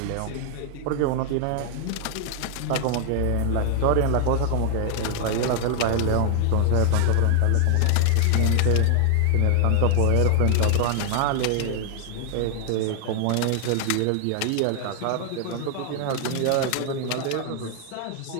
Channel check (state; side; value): different; both; correlation 0.00